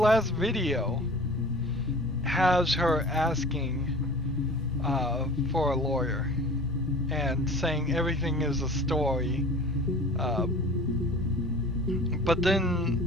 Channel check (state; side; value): normal; both; correlation 0.42